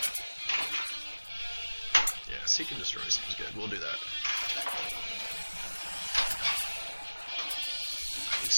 Yeah, seek and destroy sounds good. We'll do that.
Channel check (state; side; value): inverted; both; correlation -1.00